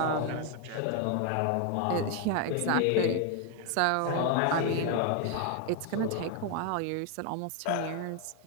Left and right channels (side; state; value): both; different; correlation 0.01